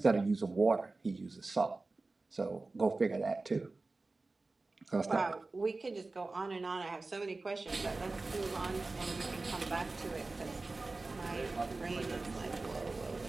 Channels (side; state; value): left; quieter; 3.4 dB